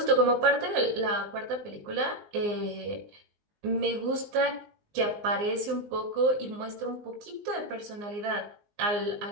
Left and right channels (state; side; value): late; left; 19 ms